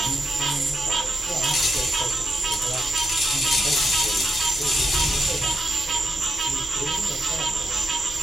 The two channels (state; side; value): normal; both; correlation 0.85